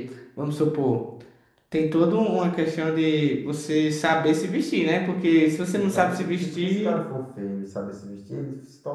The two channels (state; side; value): identical; both; correlation 1.00